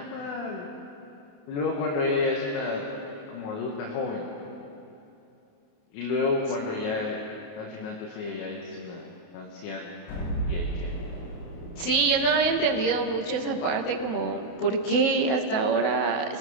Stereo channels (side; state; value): right; late; 28 ms